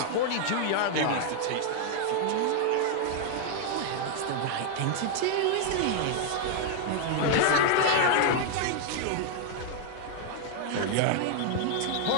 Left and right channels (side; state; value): both; different; correlation 0.00